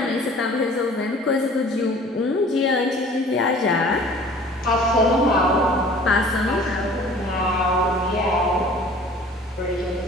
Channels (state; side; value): normal; both; correlation 0.48